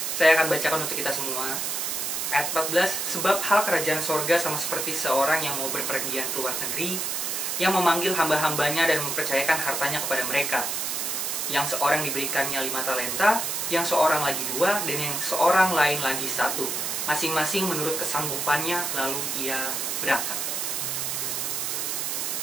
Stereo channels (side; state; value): right; noise; hiss, 1 dB below the sound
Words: Saya akan bacakan untuk kita semua. Ayat 14, sebab hal kerajaan sorga sama seperti seorang yang mau berpergian ke luar negeri, yang memanggil hamba-hambanya dan mempercayakan hartanya kepada mereka. Yang seorang diberikannya 5 talenta, yang seorang lagi 2, dan yang seorang lain lagi 1. Masing-masing menurut kesanggupannya, lalu ia berangkat.